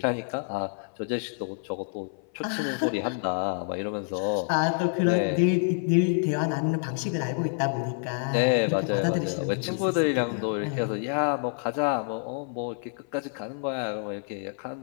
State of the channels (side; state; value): right; silent; 55 dB below the other